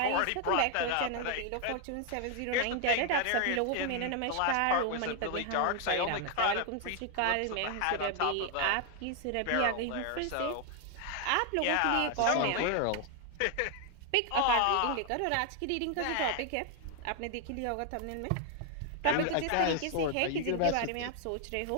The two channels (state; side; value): different; both; correlation 0.00